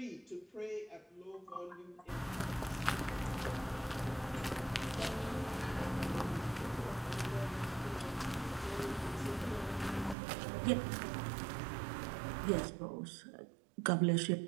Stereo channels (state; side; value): drops out; left; at 10.2 s